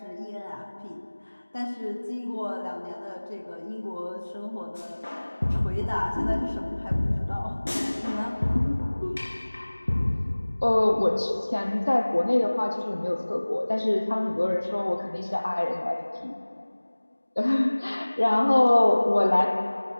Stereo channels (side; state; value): both; inverted; correlation -1.00